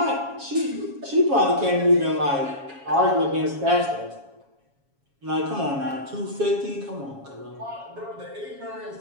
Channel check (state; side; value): late; left; 7.2 ms